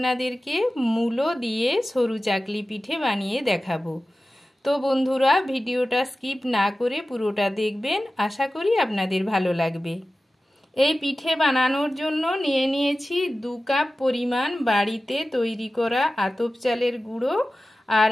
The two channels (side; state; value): both; normal; correlation 0.95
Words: মূলো দিয়ে সরু চাকলি পিঠে বানিয়ে দেখাবো। তো বন্ধুরা, ভিডিওটা স্কিপ না করে পুরোটা দেখবেন, আশা করি আপনাদের ভালো লাগবে। এই পিঠে বানানোর জন্য নিয়ে নিয়েছি 2 কাপ পরিমাণ বাড়িতে তৈরি করা আতপ চালের গুঁড়ো, আর